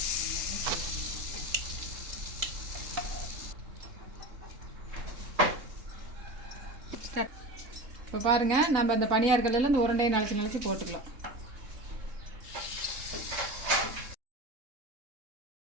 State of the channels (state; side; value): late; left; 3.7 ms